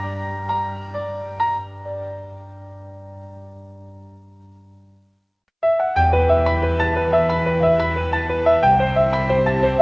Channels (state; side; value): identical; both; correlation 1.00